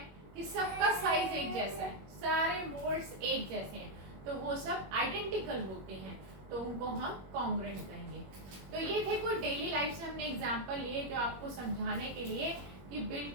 कि सबका साइज एक जैसा है, सारे मोड्स एक जैसे हैं, तो वो सब आइडेंटिकल होते हैं, तो उनको हम कॉन्ग्रुएंट कहेंगे। तो ये थे कुछ डेली लाइफ से हमने एग्जांपल लिए जो आपको समझाने के लिए कि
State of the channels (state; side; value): late; left; 21 ms